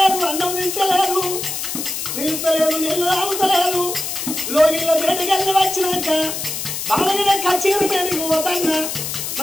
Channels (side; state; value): left; noise; hiss, 4 dB below the sound